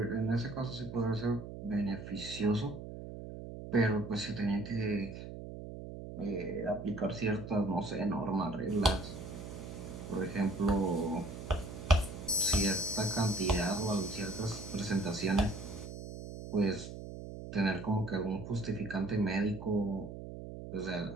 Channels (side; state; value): right; noise; hum, 10 dB below the sound